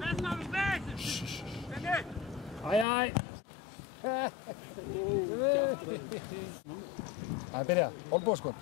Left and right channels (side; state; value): right; drops out; at 2.9 s